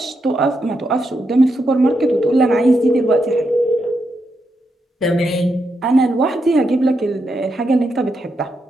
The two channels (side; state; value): both; normal; correlation 0.83